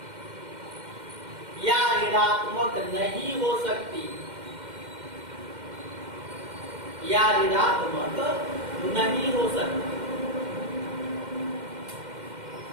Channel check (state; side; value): late; left; 2.1 ms